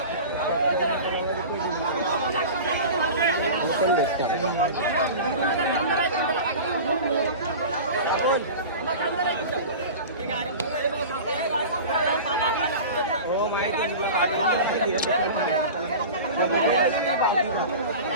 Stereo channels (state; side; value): inverted; both; correlation -0.33